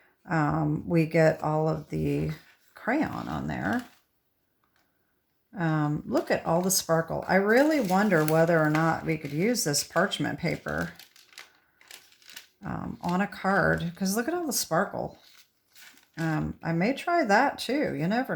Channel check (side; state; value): both; identical; correlation 1.00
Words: we get all of the crayon on there. Look at all the sparkle. I really wonder whether or not we could use this parchment paper on a card, because look at all the sparkle. I may try that too. You never